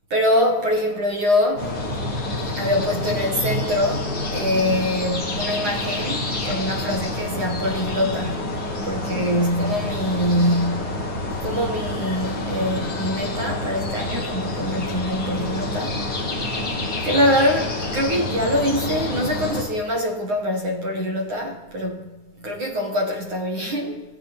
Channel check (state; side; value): late; left; 9.7 ms